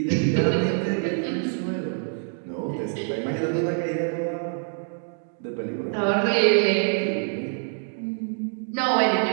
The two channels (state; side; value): silent; left; 56 dB below the other